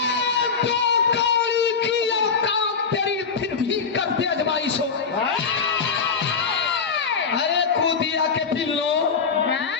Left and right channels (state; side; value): quieter; right; 5.5 dB